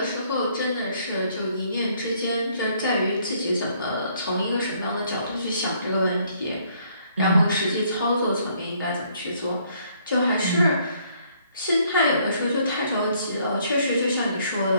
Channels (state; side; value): inverted; both; correlation -0.66